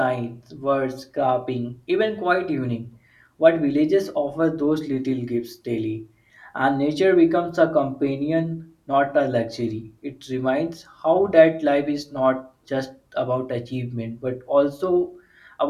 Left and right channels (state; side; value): identical; both; correlation 1.00